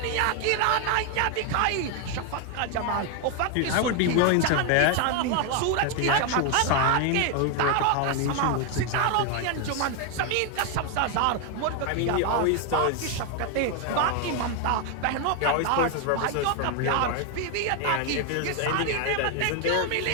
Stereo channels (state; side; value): different; both; correlation 0.01